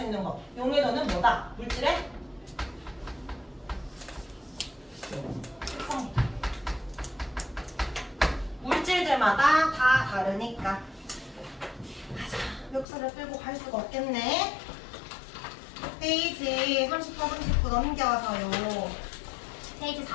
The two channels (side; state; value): right; drops out; at 12.9 s